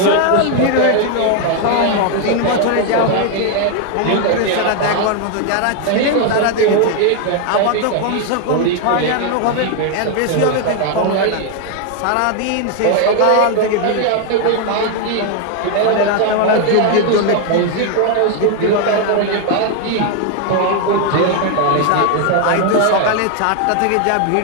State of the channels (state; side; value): different; both; correlation 0.00